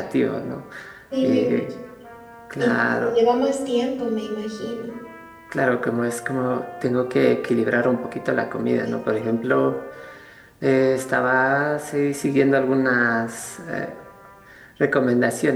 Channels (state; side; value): identical; both; correlation 1.00